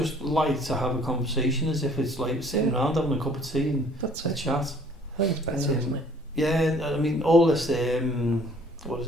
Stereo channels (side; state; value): both; normal; correlation 0.56